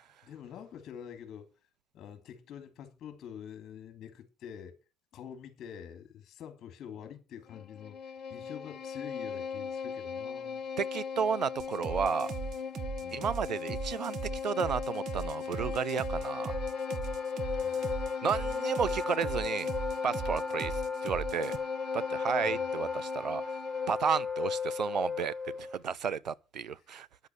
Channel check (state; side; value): normal; both; correlation 0.66